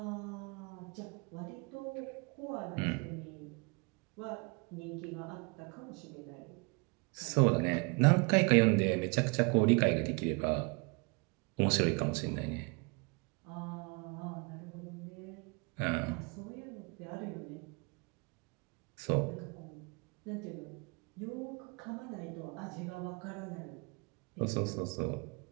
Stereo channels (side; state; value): left; quieter; 31.7 dB